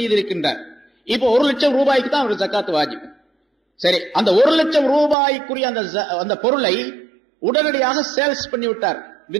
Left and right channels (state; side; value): drops out; left; at 5.2 s